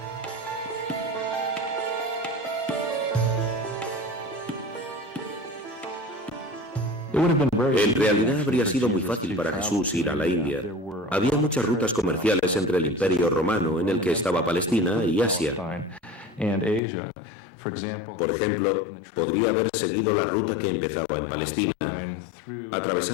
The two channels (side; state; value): right; drops out; at 16.8 s